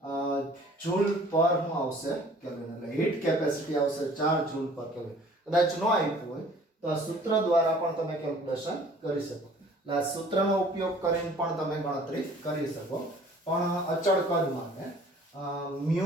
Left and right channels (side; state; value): both; normal; correlation 0.52